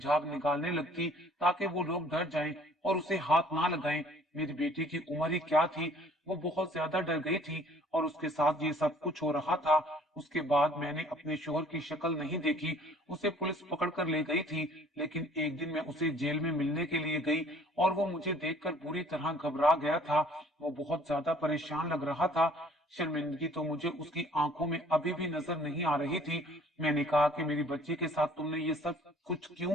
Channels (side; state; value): both; normal; correlation 0.55